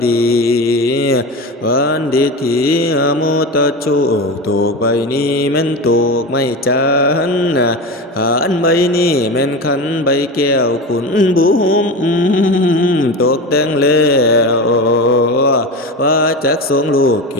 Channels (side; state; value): both; normal; correlation 0.25